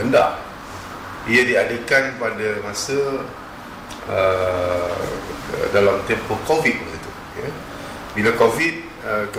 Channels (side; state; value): both; identical; correlation 1.00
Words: Ia diadakan pada masa dalam tempoh COVID itu, ya. Bila COVID,